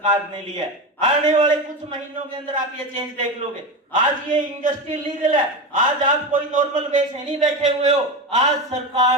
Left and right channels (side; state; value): both; normal; correlation 0.20